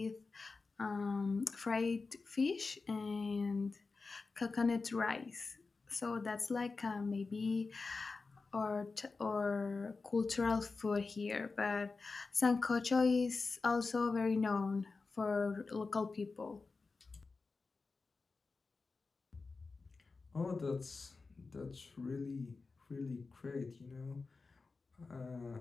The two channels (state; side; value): quieter; right; 4.1 dB